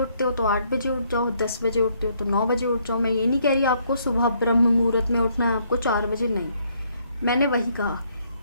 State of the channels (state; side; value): inverted; both; correlation -0.69